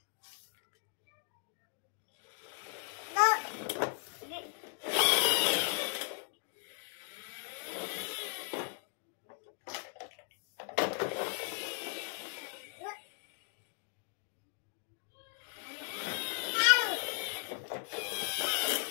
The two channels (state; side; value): silent; right; 53 dB below the other